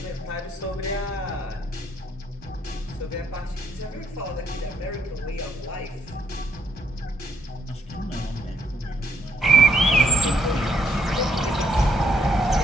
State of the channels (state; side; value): normal; both; correlation 0.72